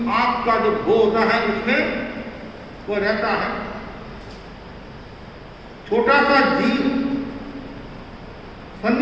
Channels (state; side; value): identical; both; correlation 1.00